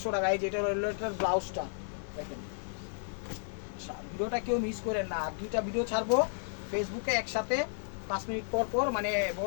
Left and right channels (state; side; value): silent; right; digital silence